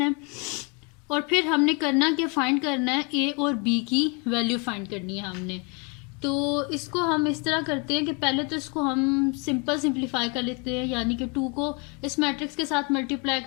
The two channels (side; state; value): right; quieter; 32.3 dB